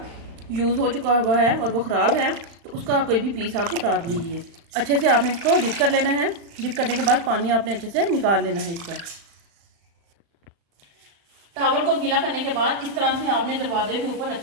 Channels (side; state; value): left; late; 35 ms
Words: यूज़ हो चुका हुआ है और वो ख़राब है, तो उसका कोई भी पीस आप उतार लीजिए। अच्छे से आपने इसको डिप कर लेना है। डिप करने के बाद पानी आपने अच्छे से निकाल लेना है इसका। टावल को गीला करने के बाद इस तरह से आपने दरवाजे के ऊपर